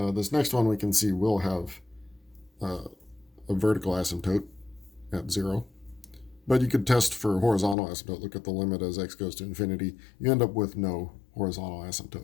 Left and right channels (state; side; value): drops out; right; at 7.8 s